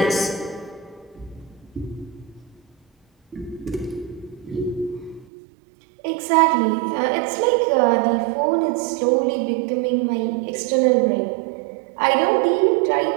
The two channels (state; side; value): drops out; left; at 5.2 s